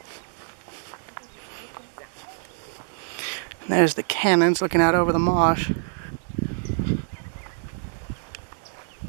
And there's the cannons looking out over the marsh.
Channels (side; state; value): left; silent; digital silence